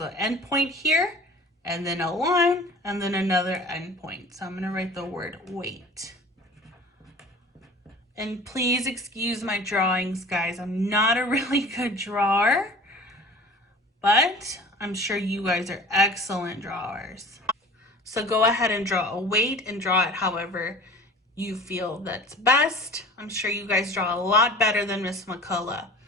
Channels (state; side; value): normal; both; correlation 0.43